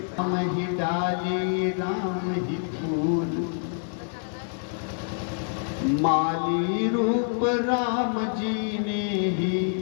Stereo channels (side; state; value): right; silent; digital silence